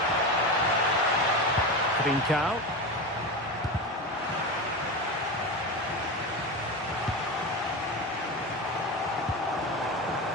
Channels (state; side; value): normal; both; correlation 0.21